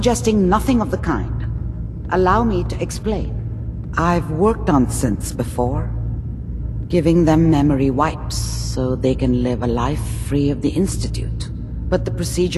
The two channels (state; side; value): identical; both; correlation 1.00